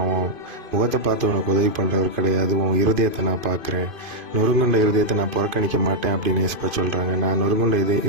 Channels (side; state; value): left; late; 2.5 ms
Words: உன் முகத்தை பார்த்து உனக்கு உதவி பண்ணுறவர் கிடையாது, உன் இருதயத்தை நான் பார்க்குறேன், நொறுங்குண்ட இருதயத்தை நான் புறக்கணிக்க மாட்டேன் அப்படின்னு ஏசப்பா சொல்கிறாங்க. நான் நொறுங்குண்ட